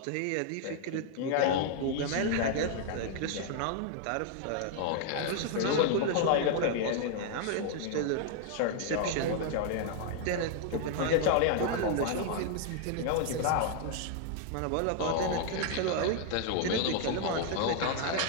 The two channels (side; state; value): both; different; correlation 0.00